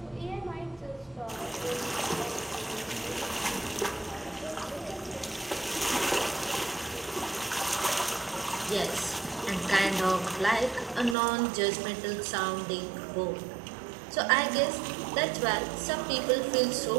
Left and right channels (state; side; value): drops out; left; at 11.2 s